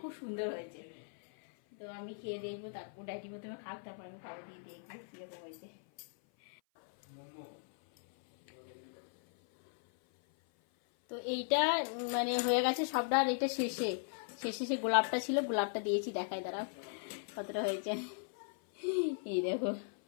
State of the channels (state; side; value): silent; right; 53 dB below the other